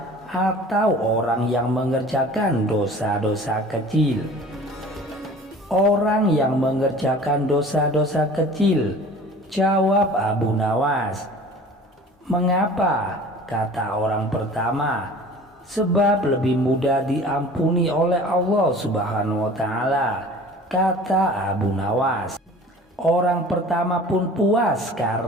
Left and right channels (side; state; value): both; normal; correlation 0.44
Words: atau orang yang mengerjakan dosa-dosa kecil? Orang yang mengerjakan dosa-dosa kecil, jawab Abu Nawas. Mengapa? Kata orang pertama. Sebab lebih mudah diampuni oleh Allah Subhanahu wa Ta'ala, kata Abu Nawas. Orang pertama pun puas